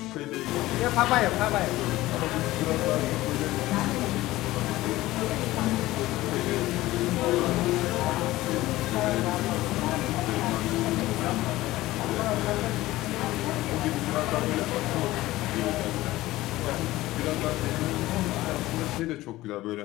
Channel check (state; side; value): quieter; right; 17.3 dB